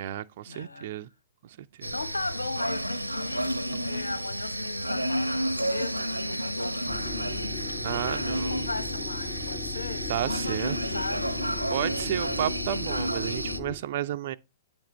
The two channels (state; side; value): inverted; both; correlation -0.75